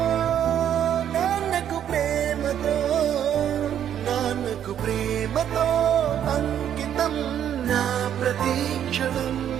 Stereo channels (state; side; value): quieter; left; 9.8 dB